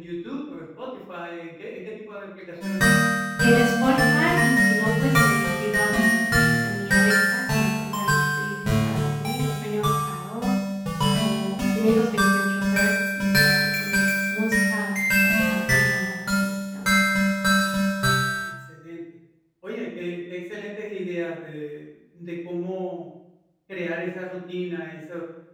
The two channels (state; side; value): identical; both; correlation 1.00